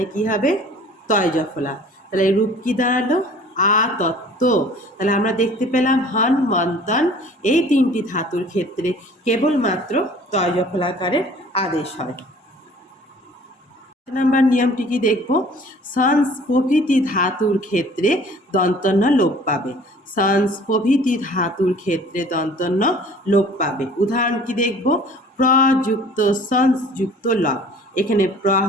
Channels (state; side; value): normal; both; correlation 0.50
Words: কি হবে, তয় জফলা। তাহলে রূপ কি দাঁড়ালো, তত্ত্ব। তাহলে আমরা দেখতে পেলাম হন মন্তন এই 3টি ধাতুর ক্ষেত্রে কেবলমাত্র তয় জফলাকারের আদেশ হয়। নাম্বার নিয়মটি কি দেখব, সংস প্রভৃতি ধাতুর ক্ষেত্রে দন্তন্য লোপ পাবে। সংস প্রভৃতি ধাতুর ক্ষেত্রে দন্তন্য লোপ পাবে। উদাহরণ কি দেখব, প্রযুক্ত সংস যুক্ত লব, এখানে প্র